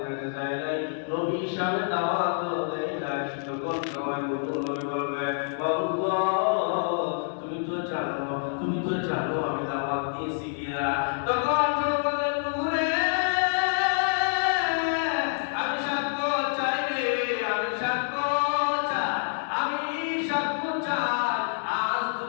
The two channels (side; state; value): right; silent; digital silence